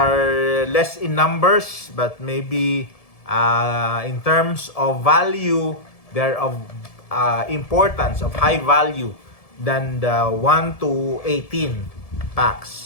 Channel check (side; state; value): right; late; 1.7 ms